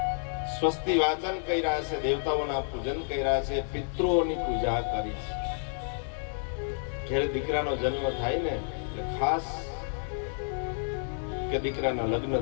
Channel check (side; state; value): right; silent; 58 dB below the other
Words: સ્વસ્તિ વાચન કર્યા છે, દેવતાઓના પૂજન કર્યા છે, પિતૃઓની પૂજા કરી છે. જ્યારે દીકરાનો જન્મ થાય ને એટલે ખાસ, કે દીકરાના લગ્ન